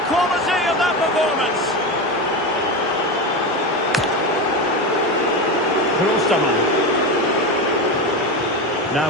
quality of that performance. Klostermann. Now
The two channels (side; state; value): both; normal; correlation 0.19